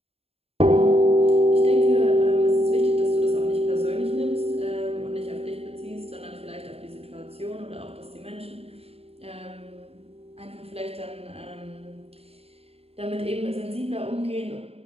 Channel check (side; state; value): left; late; 0.29 ms